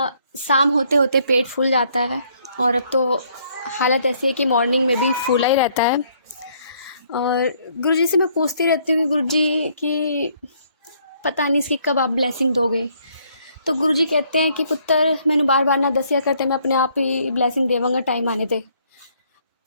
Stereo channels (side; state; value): both; inverted; correlation -0.67